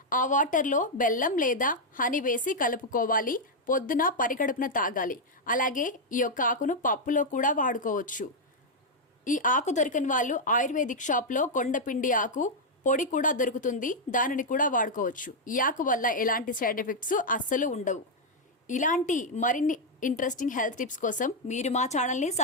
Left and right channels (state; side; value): normal; both; correlation -0.01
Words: ఆ వాటర్లో బెల్లం లేదా హనీ వేసి కలుపుకోవాలి. పొద్దున పరిగడుపున తాగాలి. అలాగే ఈ యొక్క ఆకును పప్పులో కూడా వాడుకోవచ్చు. ఈ ఆకు దొరికని వాళ్ళు ఆయుర్వేదిక్ షాప్లో కొండపిండి ఆకు పొడి కూడా దొరుకుతుంది, దానిని కూడా వాడుకోవచ్చు. ఈ ఆకు వల్ల ఎలాంటి సైడ్ ఎఫెక్ట్స్ అస్సలు ఉండవు. ఇలాంటి మరిన్ని ఇంట్రెస్టింగ్ హెల్త్ టిప్స్ కోసం మీరు మా ఛానల్ని